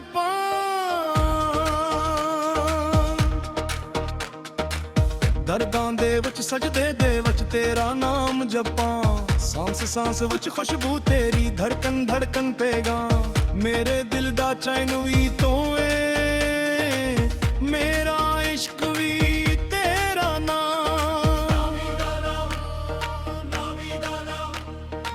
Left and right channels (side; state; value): both; identical; correlation 1.00